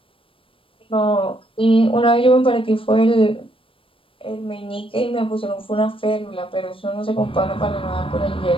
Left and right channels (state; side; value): late; right; 0.26 ms